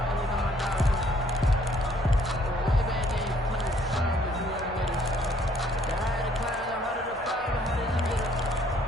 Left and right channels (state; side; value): normal; both; correlation 0.63